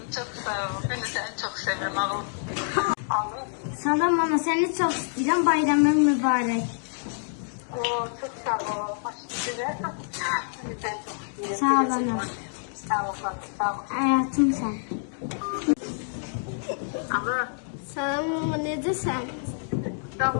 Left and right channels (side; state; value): right; silent; digital silence